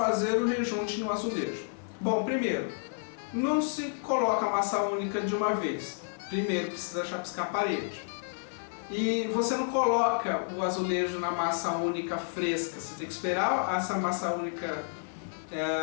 o rejunte no azulejo. Bom, primeiro, não se coloca a massa única de uma vez. Primeiro precisa chapiscar a parede. E você não coloca o azulejo na massa única fresca, você tem que esperar essa massa única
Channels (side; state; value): right; silent; 57 dB below the other